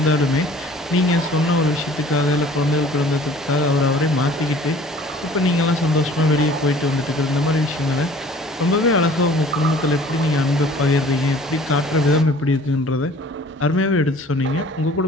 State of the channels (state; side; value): normal; both; correlation 0.50